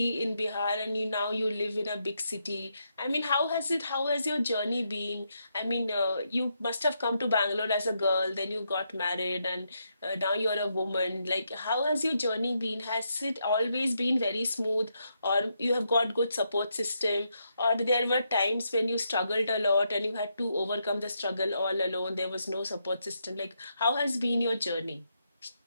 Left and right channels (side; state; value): both; inverted; correlation -0.80